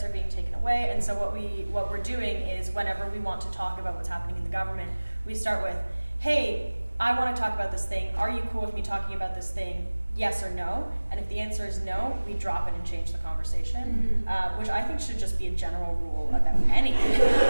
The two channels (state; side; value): inverted; both; correlation -1.00